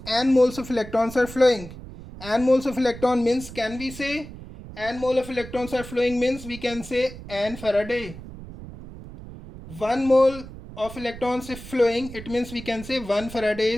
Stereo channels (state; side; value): noise; right; rumble, 14 dB below the sound